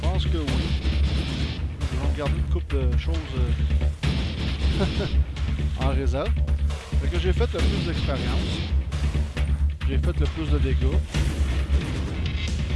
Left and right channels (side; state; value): both; identical; correlation 1.00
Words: pense que oui. Ils vont garder une couple de choses en réserve. Fait que j'ai fait le plus d'expérience. J'ai fait le plus de dégâts.